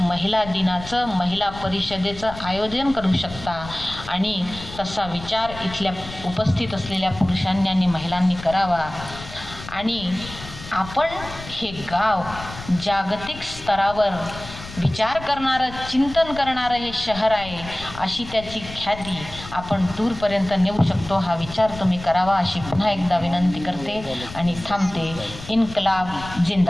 दिनाचं, महिला परिषदेचं आयोजन करू शकता. आणि तसा विचार इथल्या उपस्थित असलेल्या पुरुषांनी आणि महिलांनी करावा. आणि आपण हे गाव जागतिक स्तरावर विचार करणारं, चिंतन करणारं हे शहर आहे, अशी त्याची ख्याती आपण दूरपर्यंत नेऊ शकतो. हा विचार तुम्ही करावा अशी पुन्हा एकदा विनंती करते आणि थांबते. इन्कलाब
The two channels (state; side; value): noise; left; rumble, 14 dB below the sound